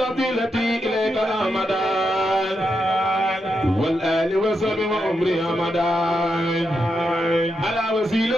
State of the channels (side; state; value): both; normal; correlation 0.84